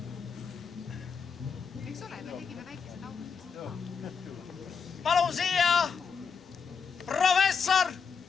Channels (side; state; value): right; quieter; 6.0 dB